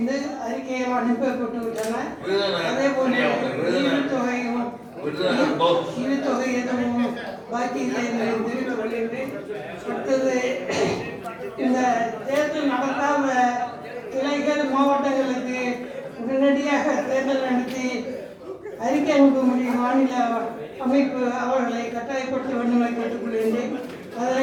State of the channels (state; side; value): identical; both; correlation 1.00